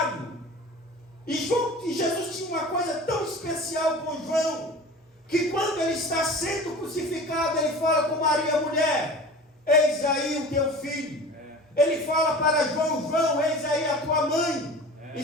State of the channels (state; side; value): normal; both; correlation 0.38